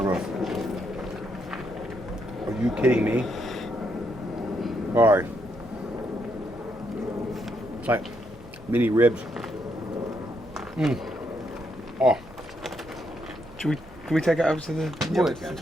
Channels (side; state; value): both; normal; correlation 0.77